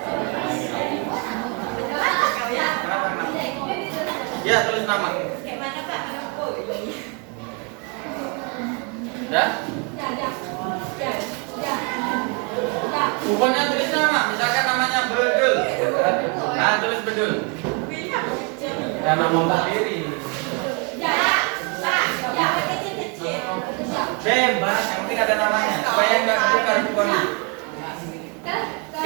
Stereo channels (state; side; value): quieter; left; 34.5 dB